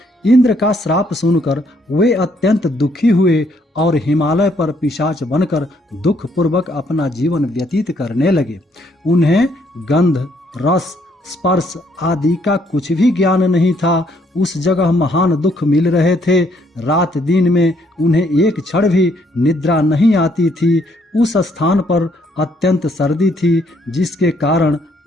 इंद्र का श्राप सुनकर वे अत्यंत दुखी हुए और हिमालय पर पिशाच बनकर दुख पूर्वक अपना जीवन व्यतीत करने लगे। उन्हें गंध, रस, स्पर्श आदि का कुछ भी ज्ञान नहीं था। उस जगह महान दुख मिल रहे थे। रात दिन में उन्हें एक क्षण भी निद्रा नहीं आती थी। उस स्थान पर अत्यंत सर्दी थी, जिसके कारण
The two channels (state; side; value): normal; both; correlation 0.69